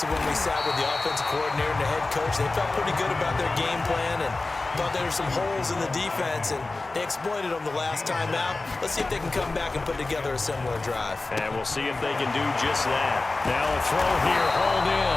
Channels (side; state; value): right; quieter; 3.4 dB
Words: to when we sat with the offensive coordinator and the head coach. They felt pretty good about their game plan and thought there were some holes in the defense, and they exploited them the last time out. Let's see if they can come back and put together a similar drive. And we'll see if they can do just that. Now a throw here, hauled